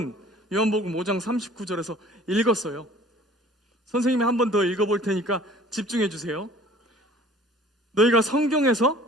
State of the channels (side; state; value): both; normal; correlation 0.50